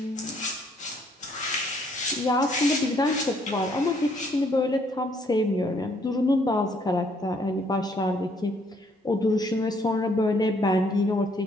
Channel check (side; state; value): both; normal; correlation 0.66